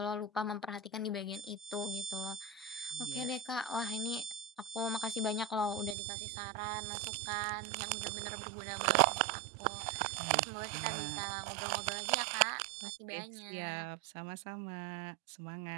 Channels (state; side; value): drops out; left; at 6.0 s